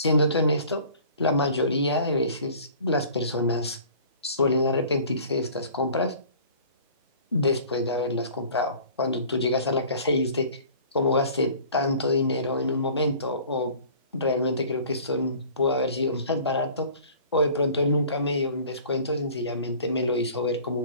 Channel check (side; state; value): both; inverted; correlation -0.47